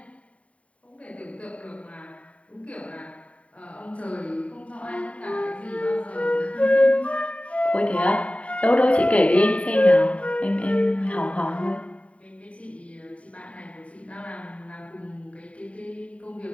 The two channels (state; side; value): late; right; 0.065 ms